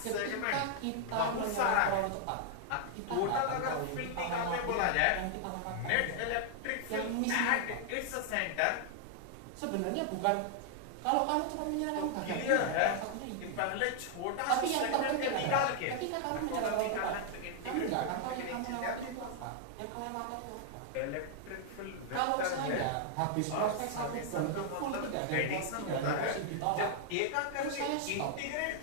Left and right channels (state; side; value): different; both; correlation 0.00